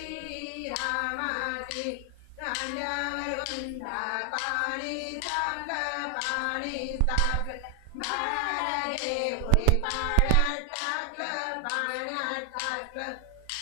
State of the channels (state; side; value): different; both; correlation 0.00